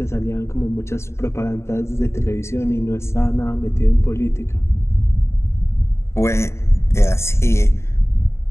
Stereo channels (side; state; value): right; late; 0.13 ms